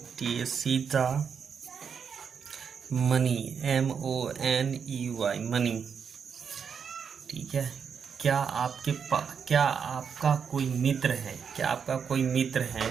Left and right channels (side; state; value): left; quieter; 6.7 dB